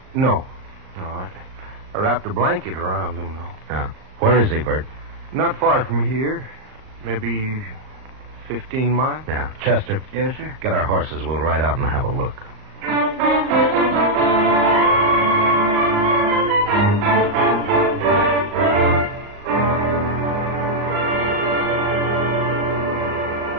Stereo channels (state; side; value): late; left; 38 ms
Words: No, I wrapped a blanket around him, though. Yeah. Where is he, Verd? Not far from here. Maybe 15 miles. Yeah. Chester. Yes, sir? Get our horses. We'll ride out and have a look.